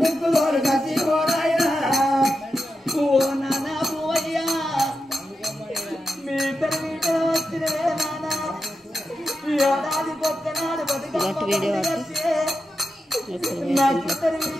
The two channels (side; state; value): both; normal; correlation 0.89